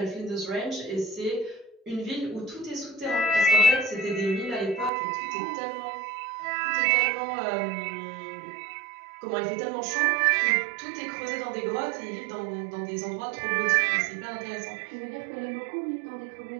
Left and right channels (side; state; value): left; drops out; at 4.9 s